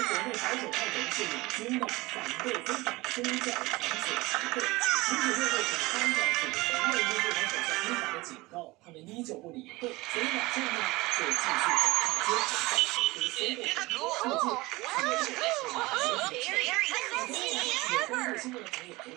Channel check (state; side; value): quieter; left; 21.6 dB